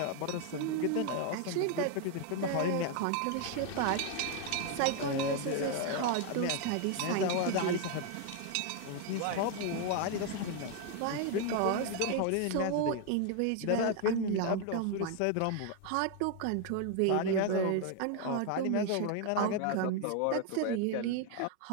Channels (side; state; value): both; different; correlation 0.01